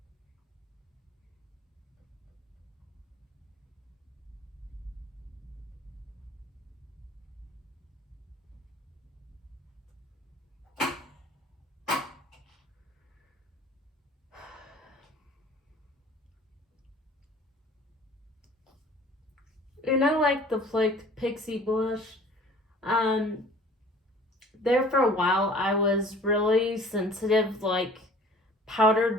I like the flaked Pixie blush. There for a while I was really sensitive, like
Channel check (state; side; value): normal; both; correlation 0.49